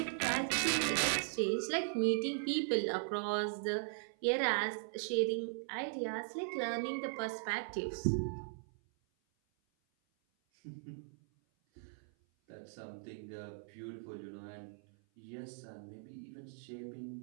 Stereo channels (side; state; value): left; silent; 52 dB below the other